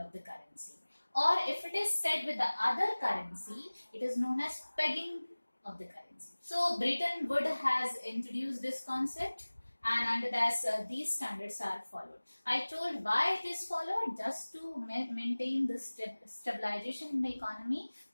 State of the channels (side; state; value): both; inverted; correlation -1.00